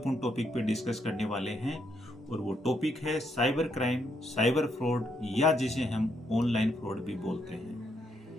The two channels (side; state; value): both; normal; correlation 0.76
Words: टॉपिक पे डिस्कस करने वाले हैं और वो टॉपिक है साइबर क्राइम, साइबर फ्रॉड या जिसे हम ऑनलाइन फ्रॉड भी बोलते हैं।